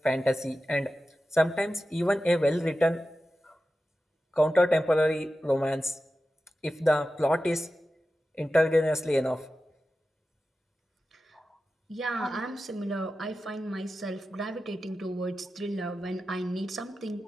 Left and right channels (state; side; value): normal; both; correlation 0.93